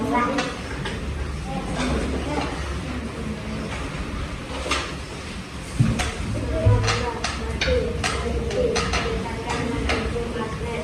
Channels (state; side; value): identical; both; correlation 1.00